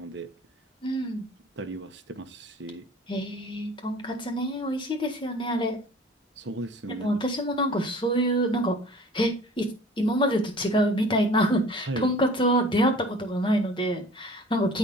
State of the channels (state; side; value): normal; both; correlation 0.46